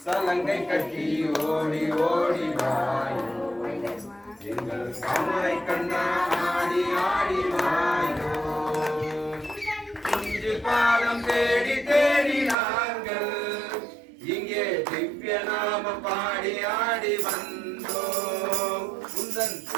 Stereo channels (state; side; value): drops out; left; at 12.6 s